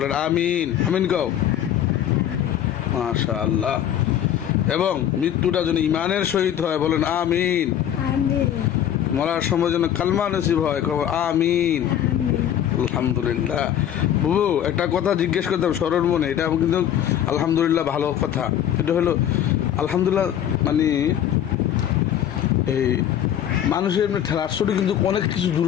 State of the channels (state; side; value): quieter; right; 10.4 dB